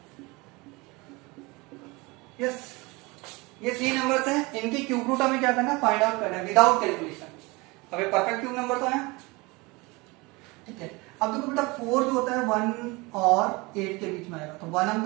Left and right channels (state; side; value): quieter; left; 24.7 dB